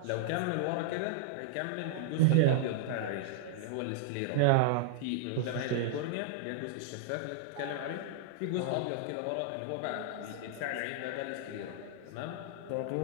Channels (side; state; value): both; different; correlation -0.01